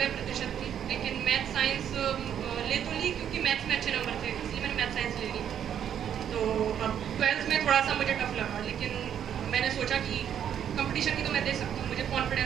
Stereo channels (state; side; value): quieter; left; 9.2 dB